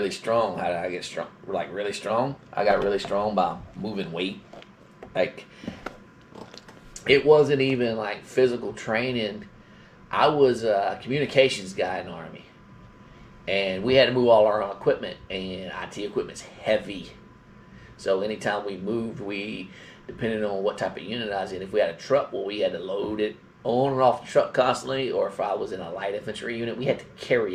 strong. How did I get strong? Like really strong? I got really strong by moving weight. Like it wasn't even like physical training. I was a communications guy in the Army. And we had to move all our own equipment, and IT equipment's heavy. So anytime we moved, depending on what type of unit I was in, if we had a truck, well, we had to load it on and off the truck constantly, or if I was in a light infantry unit, we had to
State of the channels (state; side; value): identical; both; correlation 1.00